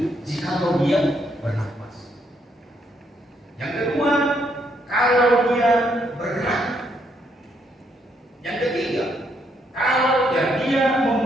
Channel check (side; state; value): both; normal; correlation 0.74